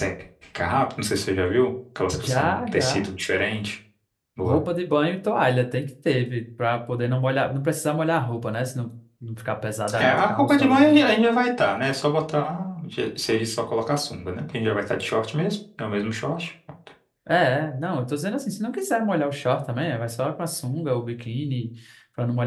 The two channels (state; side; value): identical; both; correlation 1.00